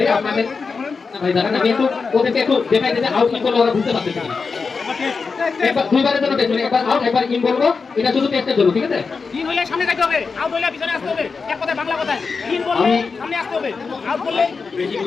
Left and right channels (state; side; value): quieter; right; 4.8 dB